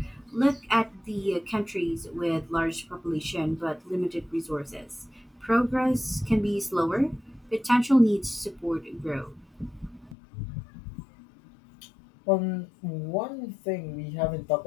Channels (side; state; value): right; drops out; at 10.2 s